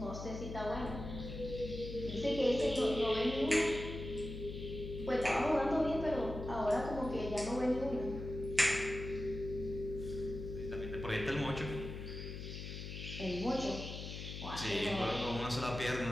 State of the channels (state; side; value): noise; left; hum, 8 dB below the sound